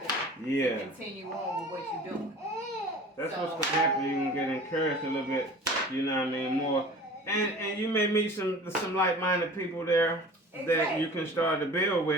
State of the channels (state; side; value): normal; both; correlation 0.42